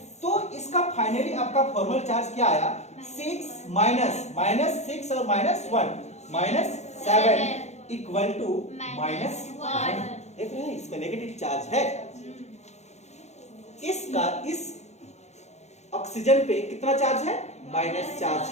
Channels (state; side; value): late; right; 0.33 ms